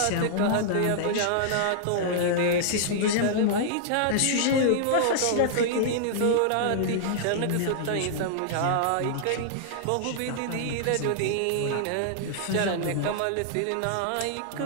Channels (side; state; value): both; different; correlation -0.01